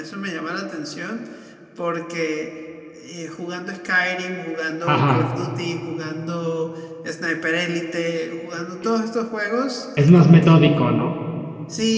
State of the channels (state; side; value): identical; both; correlation 1.00